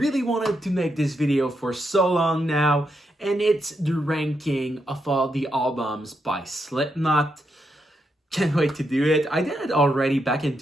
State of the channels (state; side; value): normal; both; correlation 0.82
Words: wanted to make this video for so long now, and it's the ranking of all the albums by Slipknot. Can't wait to do it. I did it already back in